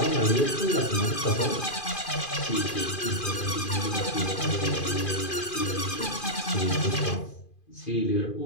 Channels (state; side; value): late; right; 2.4 ms